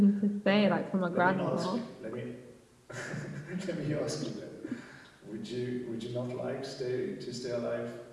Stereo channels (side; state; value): both; identical; correlation 1.00